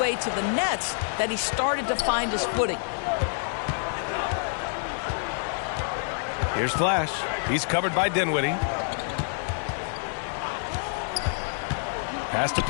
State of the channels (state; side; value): silent; right; 60 dB below the other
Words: to the Nets that he started to find his footing. Here's Flash. He's covered by Dinwiddie. Pass to